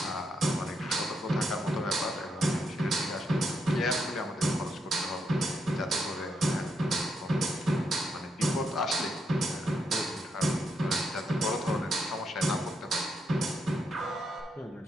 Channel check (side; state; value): both; normal; correlation 0.80